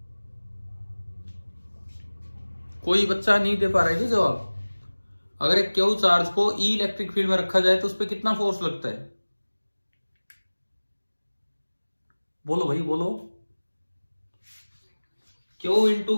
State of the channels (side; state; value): both; inverted; correlation -1.00